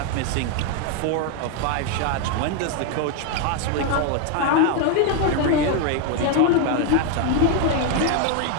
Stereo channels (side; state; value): both; different; correlation 0.01